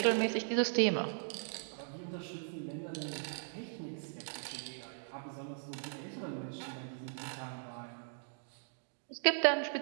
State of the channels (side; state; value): left; silent; digital silence